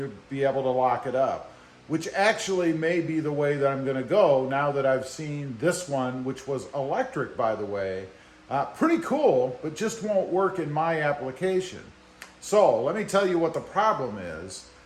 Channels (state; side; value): identical; both; correlation 1.00